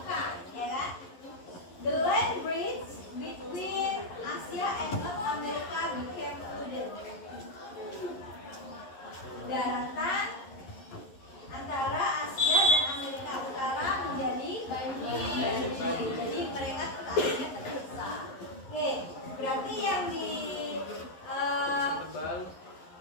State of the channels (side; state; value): right; late; 11 ms